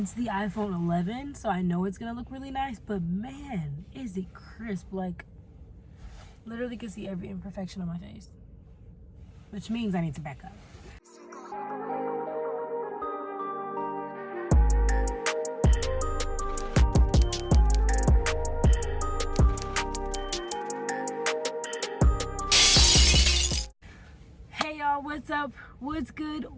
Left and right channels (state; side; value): identical; both; correlation 1.00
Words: it's the iPhone 11, so I know it's gonna look really nice, but man, is it crisp. Like, literally can see every imperfection on my face, which means I need to back up. Hey y'all, what's up? What's good?